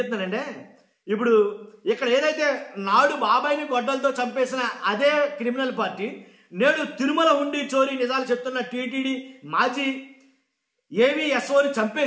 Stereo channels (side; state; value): both; identical; correlation 1.00